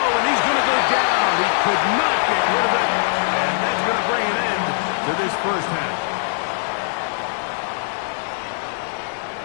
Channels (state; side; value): silent; right; digital silence